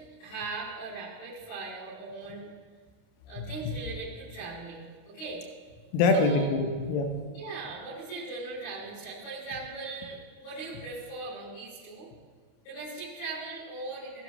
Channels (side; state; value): right; late; 29 ms